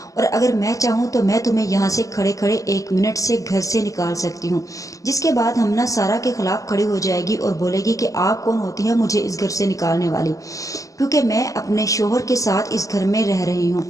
और अगर मैं चाहूँ तो मैं तुम्हें यहाँ से खड़े खड़े 1 मिनट से घर से निकाल सकती हूँ। जिसके बाद हमना सारा के खिलाफ खड़ी हो जाएगी और बोलेगी कि आप कौन होती है मुझे इस घर से निकालने वाली, क्योंकि मैं अपने शोहर के साथ इस घर में रह रही हूँ।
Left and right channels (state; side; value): late; right; 0.16 ms